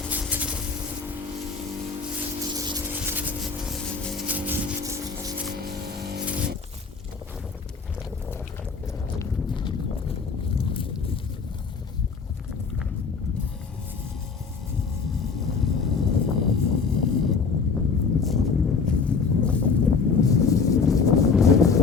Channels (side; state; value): right; quieter; 5.2 dB